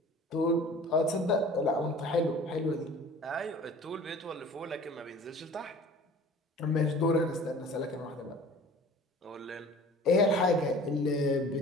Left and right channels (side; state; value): both; normal; correlation 0.45